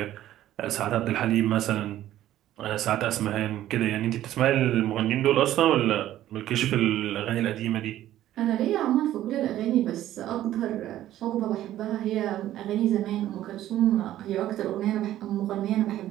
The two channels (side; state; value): left; quieter; 13.2 dB